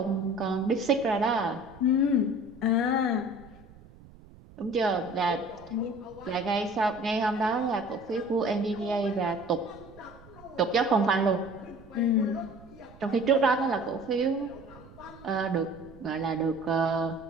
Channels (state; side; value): noise; right; rumble, 22 dB below the sound